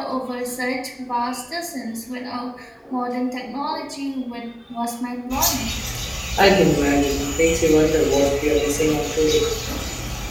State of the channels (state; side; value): identical; both; correlation 1.00